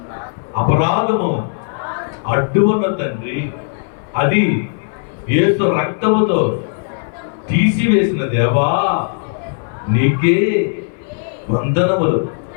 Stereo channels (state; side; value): silent; right; 61 dB below the other